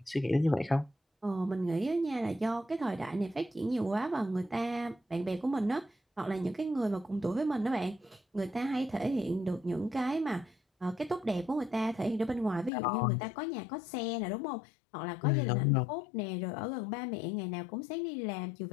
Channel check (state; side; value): drops out; right; at 12.7 s